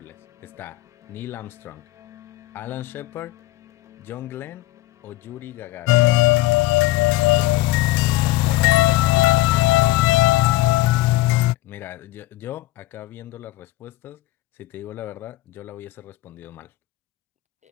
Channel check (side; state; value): right; quieter; 17.6 dB